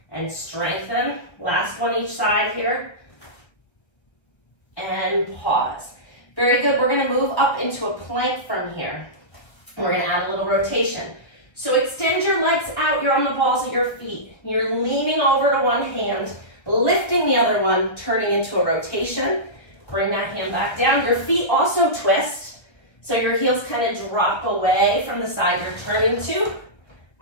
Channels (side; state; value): right; late; 1.5 ms